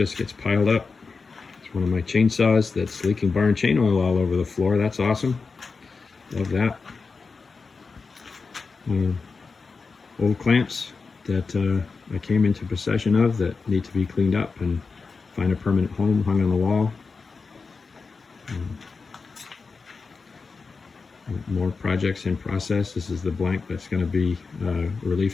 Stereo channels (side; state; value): right; quieter; 4.6 dB